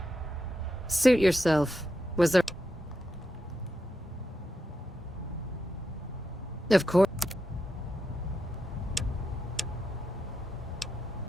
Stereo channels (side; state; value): both; normal; correlation 0.86